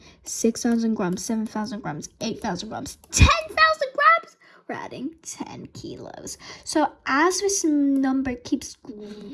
6,000 grams, 7,000 grams, 8,000 grams, 10,000 grams. We're adding 10 kilos. So as this number keeps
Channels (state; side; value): identical; both; correlation 1.00